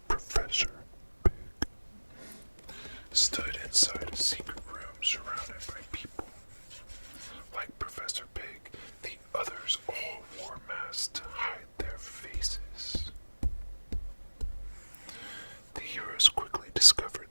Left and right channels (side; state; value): both; inverted; correlation -1.00